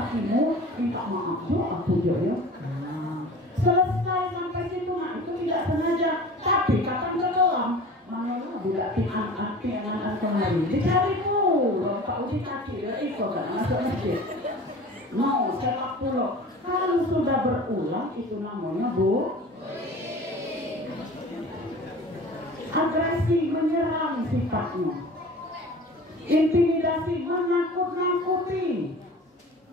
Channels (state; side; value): normal; both; correlation 0.40